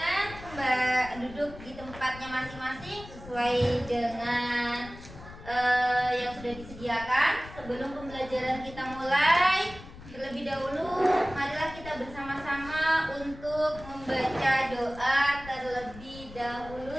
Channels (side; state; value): left; noise; rumble, 16 dB below the sound